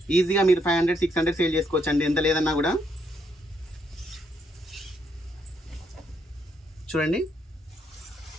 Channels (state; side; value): normal; both; correlation 0.75